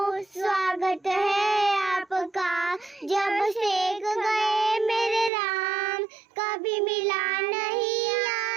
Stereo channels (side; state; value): left; drops out; at 5.3 s